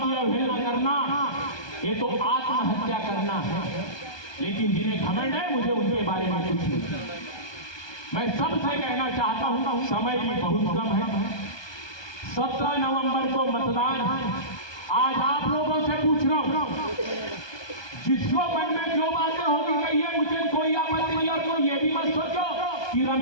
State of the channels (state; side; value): late; right; 1.2 ms